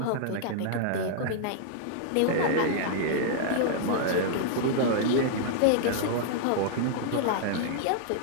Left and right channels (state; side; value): different; both; correlation -0.01